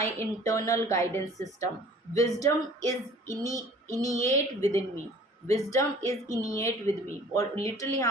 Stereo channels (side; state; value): both; normal; correlation 0.50